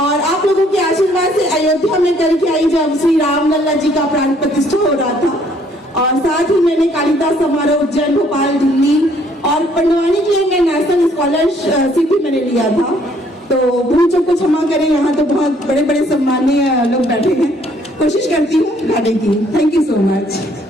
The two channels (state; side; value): normal; both; correlation 0.64